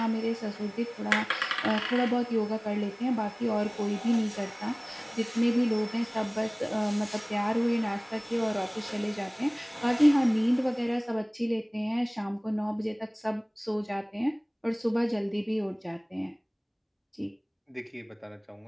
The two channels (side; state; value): both; identical; correlation 1.00